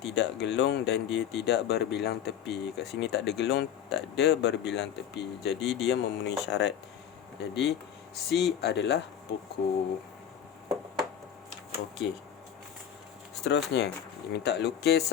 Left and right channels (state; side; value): quieter; right; 9.4 dB